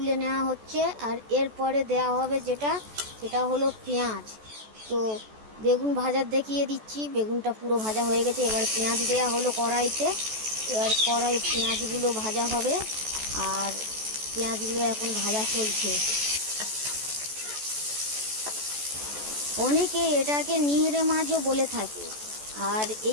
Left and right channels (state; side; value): late; left; 14 ms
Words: নেওয়া হচ্ছে। আর এরপরে দেওয়া হবে সেটা হলো পেঁয়াজ। তো বেগুন ভাজার দেখিয়ে দিচ্ছি, বেগুনটা পুরো ভাজা হয়ে গেছে। এবার পেঁয়াজ দেওয়া হলো কড়াইতে। এবার পেঁয়াজগুলো ভাজা হবে, আর পেঁয়াজগুলো এখন ভাজা চলছে। অনেকে এটাকে নিহরে মাছও বলে থাকে। আর